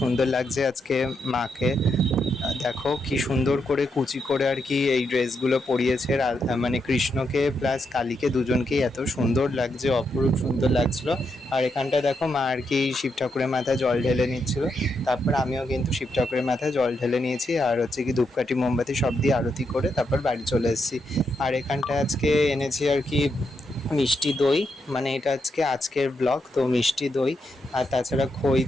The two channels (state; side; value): normal; both; correlation 0.81